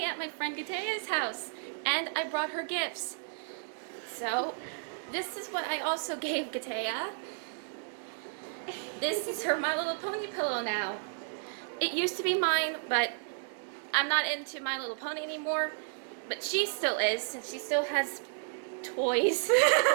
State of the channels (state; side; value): silent; left; digital silence